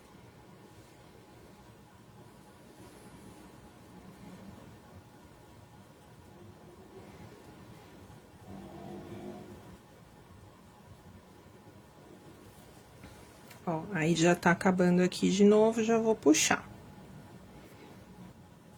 Ó, aí já tá acabando aqui de novo, já vou puxar.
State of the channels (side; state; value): both; identical; correlation 1.00